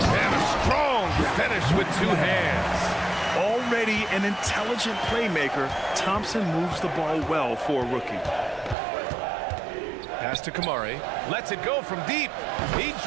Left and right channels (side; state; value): left; drops out; at 8.8 s